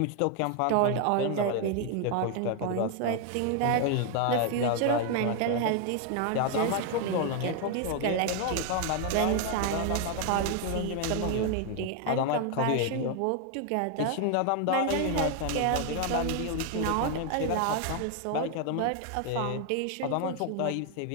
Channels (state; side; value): different; both; correlation 0.01